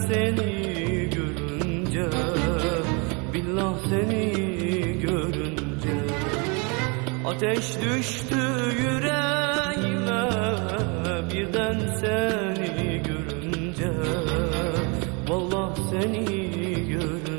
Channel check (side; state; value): left; quieter; 31.9 dB